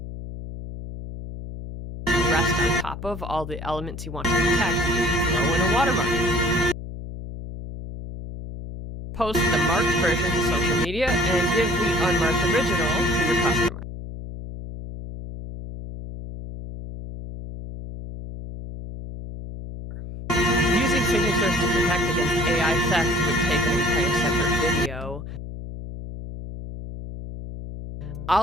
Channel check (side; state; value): left; noise; hum, 10 dB below the sound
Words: rest on top of all the elements you want to protect, throw in a watermark. Post the marked version to social media and give the unmarked original to your customer. Using signatures to protect against AI theft would take an entire separate video.